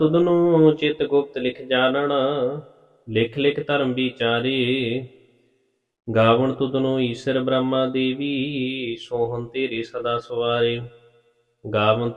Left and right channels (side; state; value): both; identical; correlation 1.00